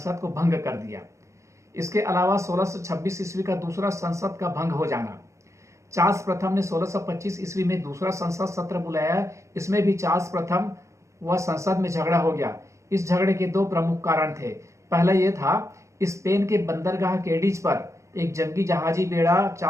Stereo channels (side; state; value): left; late; 0.15 ms